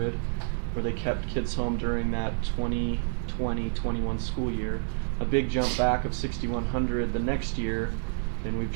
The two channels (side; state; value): left; silent; digital silence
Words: where they kept kids home during that 2020-21 school year. A big jump back of 6,100 the next year, and we've